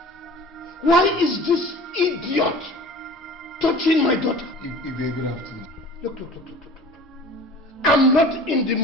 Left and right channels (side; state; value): both; normal; correlation 0.42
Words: Why is this idiot touching my daughter? Ibe, good afternoon. Look. I'm not in the